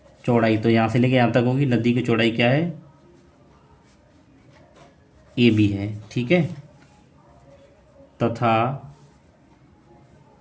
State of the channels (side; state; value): both; identical; correlation 1.00